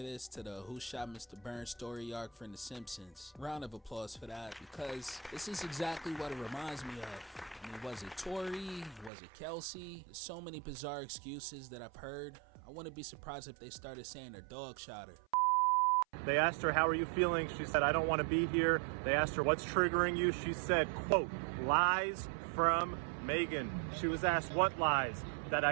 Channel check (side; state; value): left; drops out; at 9.1 s